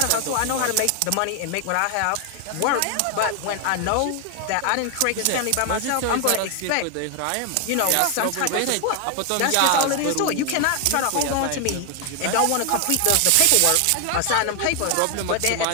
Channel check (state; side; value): different; both; correlation 0.00